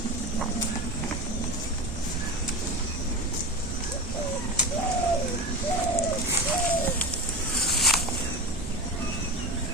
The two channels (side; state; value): both; normal; correlation 0.25